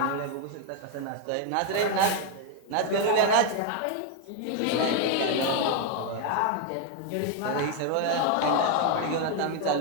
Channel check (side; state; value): both; different; correlation 0.01